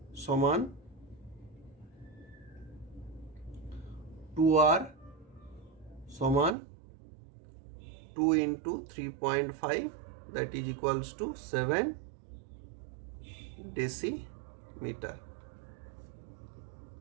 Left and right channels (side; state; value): left; drops out; at 6.6 s